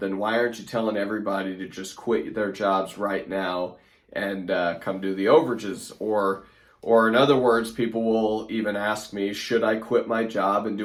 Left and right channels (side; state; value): both; identical; correlation 1.00